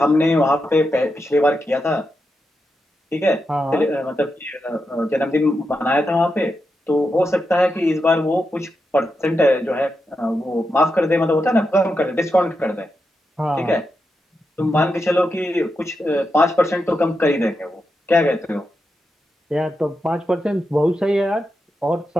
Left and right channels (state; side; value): normal; both; correlation 0.87